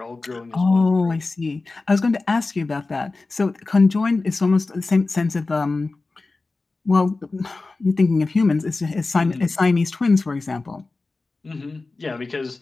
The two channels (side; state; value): right; quieter; 3.5 dB